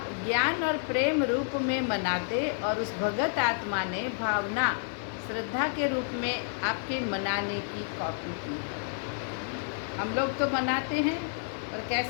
ज्ञान और प्रेम रूप में मनाते और उस भगत आत्मा ने भावना श्रद्धा के रूप में आपके मनाने की कॉपी की है। हम लोग तो मनाते हैं, और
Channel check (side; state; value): right; silent; digital silence